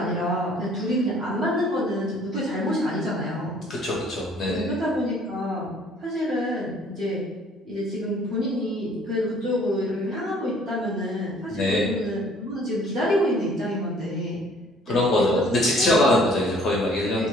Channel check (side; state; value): both; normal; correlation 0.57